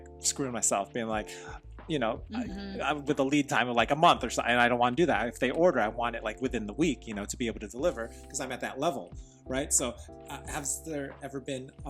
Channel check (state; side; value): identical; both; correlation 1.00